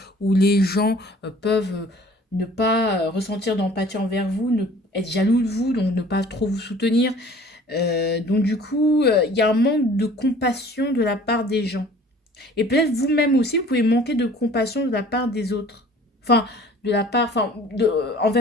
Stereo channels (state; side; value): normal; both; correlation 0.50